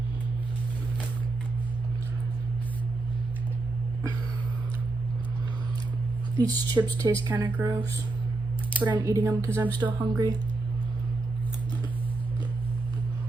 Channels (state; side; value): quieter; left; 3.2 dB